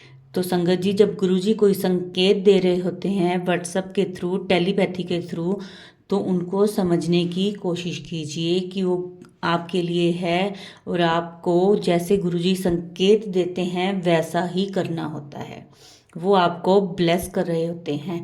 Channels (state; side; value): identical; both; correlation 1.00